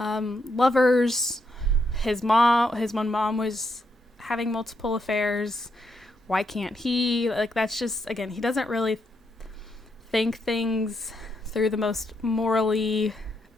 lovers. His one mom was having multiple affairs. Why can't he? Like, that's just, again, he doesn't really think things through the most morally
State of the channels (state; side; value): normal; both; correlation 0.79